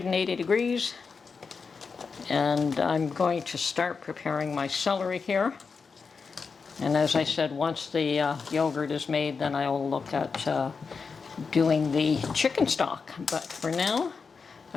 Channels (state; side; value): quieter; right; 5.1 dB